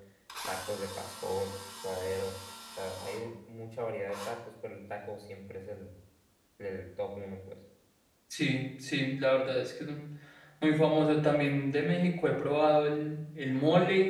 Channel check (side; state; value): both; identical; correlation 1.00